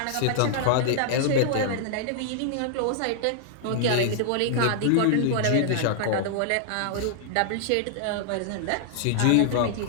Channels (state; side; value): different; both; correlation -0.01